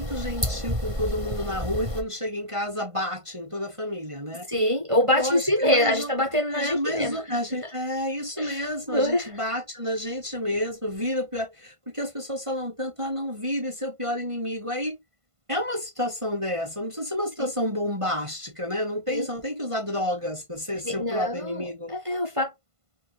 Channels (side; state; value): left; late; 1.5 ms